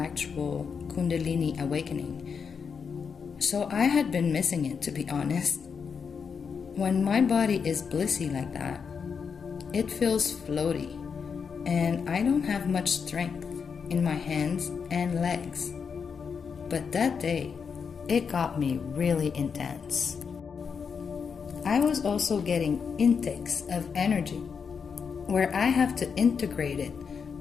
Kundalini awakening. So I had been missing it, to be honest. When my body is blissy like that, it feels floaty, and I don't have much strength in my hands and legs. But that day, it got me really intense. I was also getting intakes of energy, where I have to integrate it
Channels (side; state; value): right; quieter; 6.2 dB